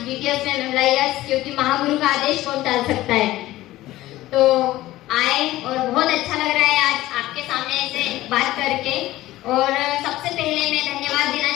जीटीएस में मेमोरियस, क्योंकि महागुरु का आदेश कौन टाल सकता है। तो आए और बहुत अच्छा लग रहा है आज आपके सामने ऐसे बात करके। और सबसे पहले मैं धन्यवाद देना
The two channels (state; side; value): quieter; right; 16.2 dB